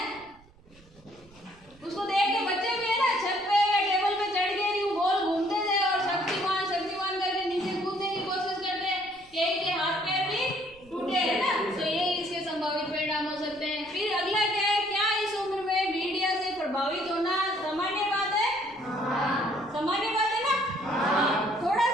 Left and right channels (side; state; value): right; noise; rumble, 27 dB below the sound